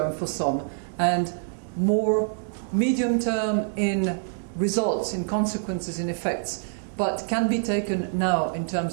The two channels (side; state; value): left; silent; digital silence